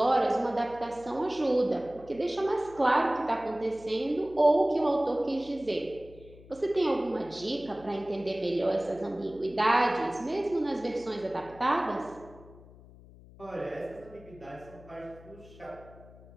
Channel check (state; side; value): noise; left; hum, 21 dB below the sound